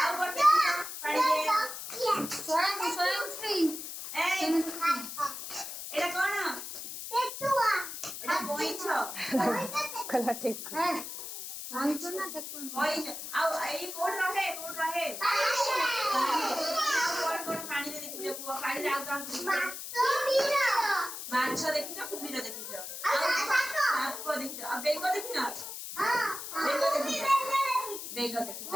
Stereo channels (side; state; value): left; noise; hiss, 8 dB below the sound